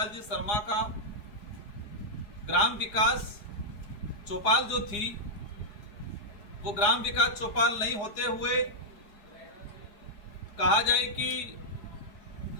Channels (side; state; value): right; late; 4.9 ms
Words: जी शर्मा का ग्राम विकास चौपाल जो थी वो ग्राम विकास चौपाल नहीं होते हुए कहा जाए कि